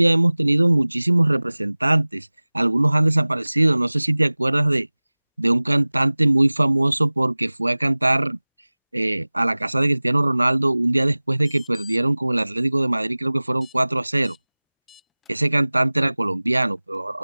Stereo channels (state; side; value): inverted; both; correlation -1.00